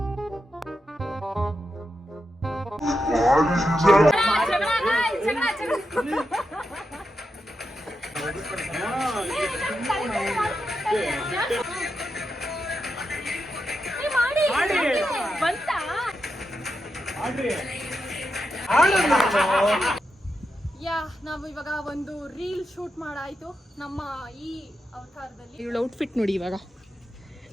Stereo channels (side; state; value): both; normal; correlation 0.87